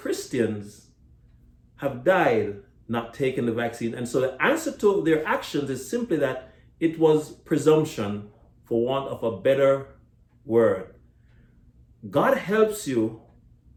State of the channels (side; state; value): both; identical; correlation 1.00